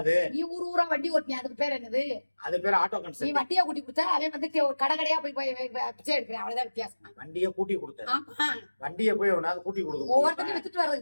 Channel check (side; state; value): both; inverted; correlation -1.00